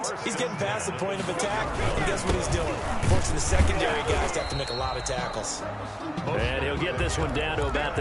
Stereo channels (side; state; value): both; identical; correlation 1.00